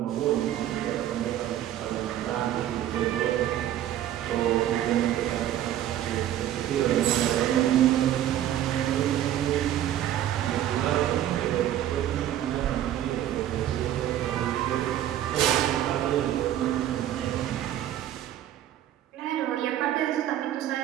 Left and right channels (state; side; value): quieter; left; 11.9 dB